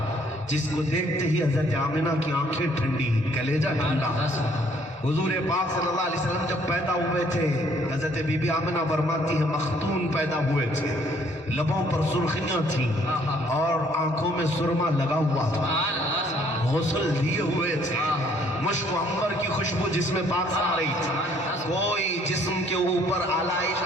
جس کو دیکھتے ہی حضرت آمنہ کی آنکھیں ٹھنڈی، کلیجہ ٹھنڈا. حضور پاک صلی اللہ علیہ وسلم جب پیدا ہوئے تھے، حضرت بی بی آمنہ فرماتی ہے مختون پیدا ہوئے تھے، لبوں پر سرخیاں تھیں اور آنکھوں میں سرما لگا ہوا تھا، غسل دیے ہوئے تھے، مشک و عنبر کی خوشبو جسم پاک سے آ رہی تھی. کوئی جسم کے اوپر آلائش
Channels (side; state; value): both; normal; correlation 0.63